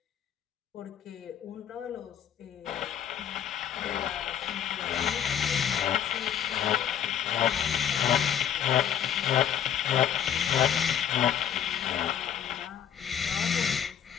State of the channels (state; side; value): quieter; right; 9.3 dB